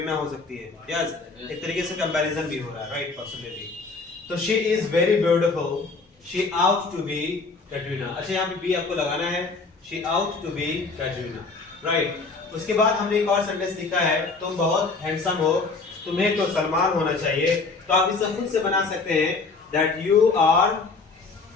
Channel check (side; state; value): right; quieter; 4.1 dB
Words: हो सकती है, यस। एक तरीके से कंपैरिजन भी हो रहा है, राइट, पॉसिबिलिटी। तो she is very beautiful, she ought to be Katrina. अच्छा, यहाँ पे बी आपको लगाना है, she ought to be Katrina, right. उसके बाद हमने एक और सेंटेंस लिखा है, तुम बहुत हैंडसम हो, तुम्हें तो सलमान होना चाहिए। तो आप इसे खुद से बना सकते हैं, that you are